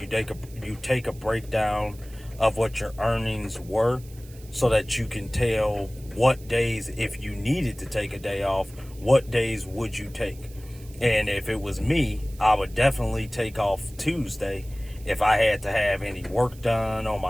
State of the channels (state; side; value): noise; right; hiss, 23 dB below the sound